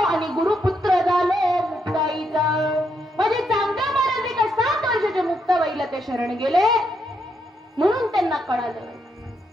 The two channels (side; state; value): both; normal; correlation 0.78